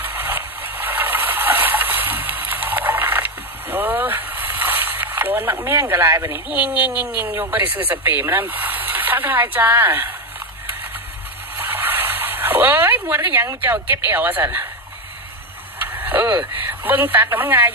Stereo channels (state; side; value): normal; both; correlation 0.11